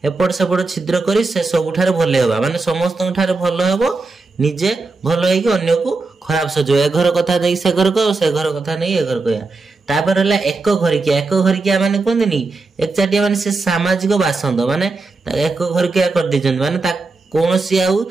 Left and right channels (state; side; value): quieter; left; 3.7 dB